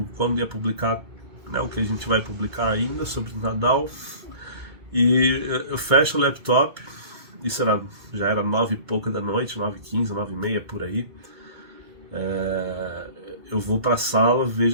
ia publicar, né, o que a gente vai publicar ainda sobre o Nadal. E eu fecho o laptop, já era 9 e pouca da noite, 9h15, 9h30 por aí. Eu vou pra sala,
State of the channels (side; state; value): left; late; 2.2 ms